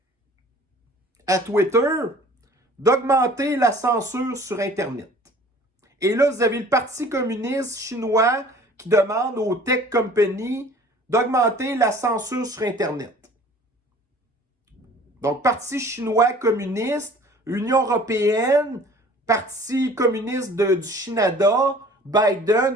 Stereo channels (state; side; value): normal; both; correlation 0.49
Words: à Twitter d'augmenter la censure sur Internet. Et là, vous avez le Parti communiste chinois qui demande aux tech companies d'augmenter la censure sur Internet. Donc, Parti chinois communiste, Union européenne, Parti communiste du Canada,